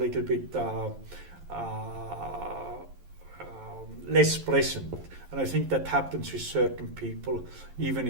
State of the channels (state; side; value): late; left; 11 ms